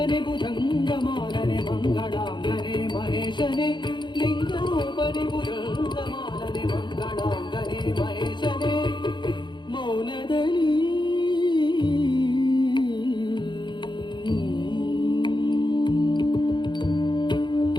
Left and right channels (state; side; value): late; right; 0.22 ms